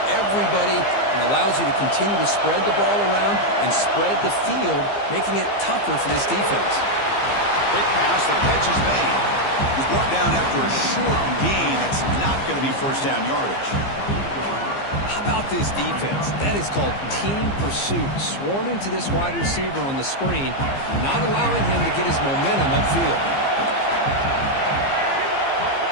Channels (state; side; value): late; right; 15 ms